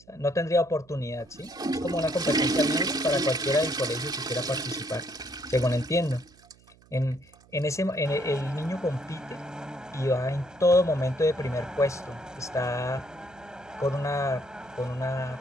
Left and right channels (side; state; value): right; noise; hum, 28 dB below the sound